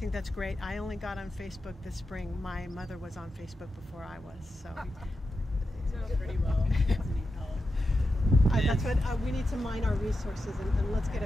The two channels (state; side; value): normal; both; correlation 0.89